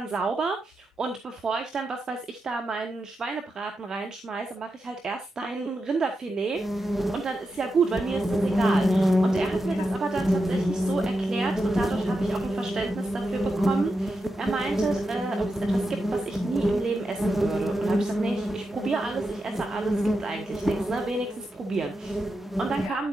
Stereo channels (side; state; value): both; normal; correlation 0.88